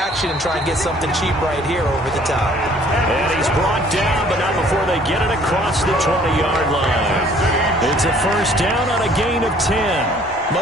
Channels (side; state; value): both; normal; correlation 0.57